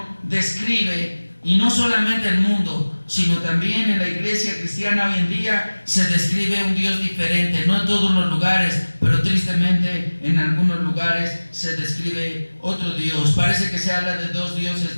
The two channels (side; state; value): both; inverted; correlation -1.00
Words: describe Y no solamente el mundo, sino también en la iglesia cristiana hoy en día se describe un Dios diferente. No en todos los lugares, pero tristemente en algunos lugares se describe otro Dios. Parece que se habla de dos